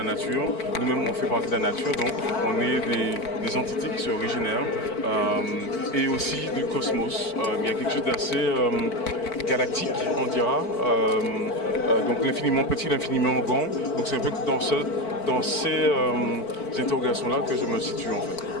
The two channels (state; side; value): late; right; 4.5 ms